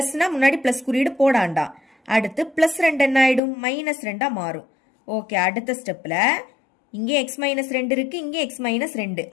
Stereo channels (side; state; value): right; drops out; at 3.4 s